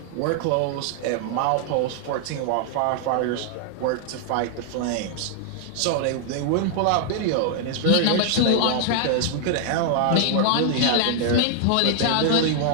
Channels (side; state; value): both; different; correlation 0.00